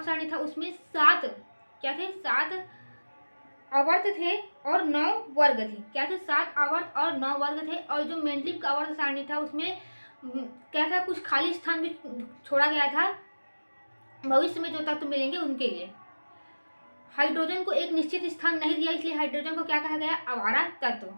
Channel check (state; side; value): inverted; both; correlation -1.00